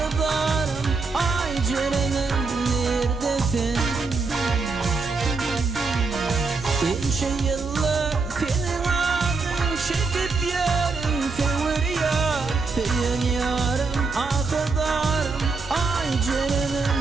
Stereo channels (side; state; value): left; quieter; 4.2 dB